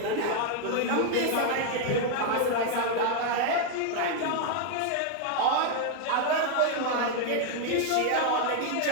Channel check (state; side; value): different; both; correlation 0.00